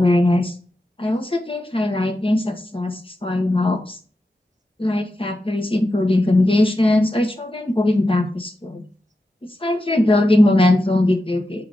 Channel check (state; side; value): normal; both; correlation 0.89